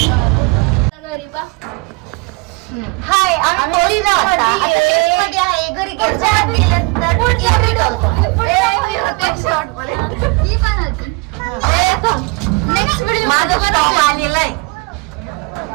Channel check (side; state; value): left; quieter; 27.5 dB